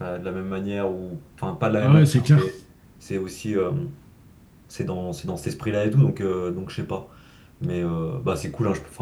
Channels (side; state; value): both; identical; correlation 1.00